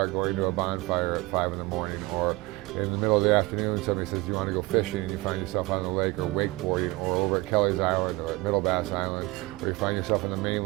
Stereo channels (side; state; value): left; quieter; 22.0 dB